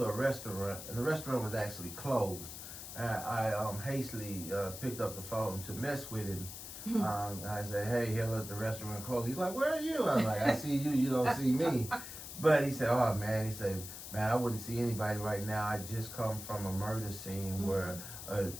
a restaurant, and the restaurant was actually closed. And I hastily picked up the phone to mess with him. I said, hey, Hillard, the restaurant closed. He's like, where are you? I was like, I see you, you don't see me. But he said, oh man, man, I wouldn't see anybody right now. I just come from a murder scene where a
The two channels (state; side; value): noise; left; hiss, 10 dB below the sound